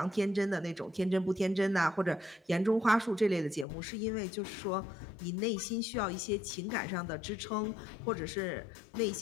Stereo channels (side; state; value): right; drops out; at 3.7 s